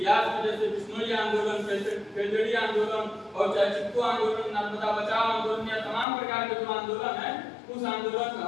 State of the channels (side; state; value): right; drops out; at 6.1 s